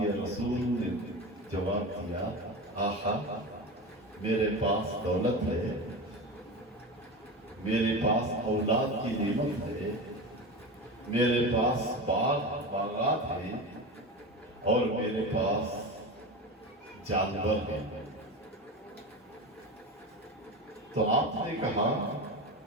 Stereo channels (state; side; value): normal; both; correlation 0.25